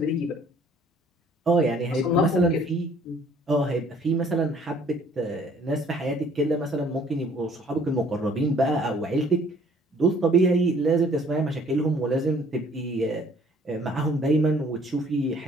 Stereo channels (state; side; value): normal; both; correlation 0.58